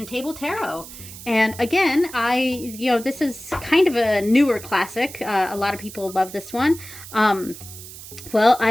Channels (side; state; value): right; noise; hiss, 15 dB below the sound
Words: Table Tarot. And again, this is kind of a newer classic. A lot of people love this one. Well,